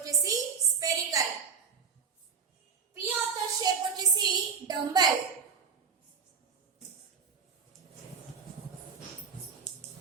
స్పెరికల్. p ఆర్డర్ షేప్ వచ్చేసి డంబెల్.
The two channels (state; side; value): quieter; left; 6.0 dB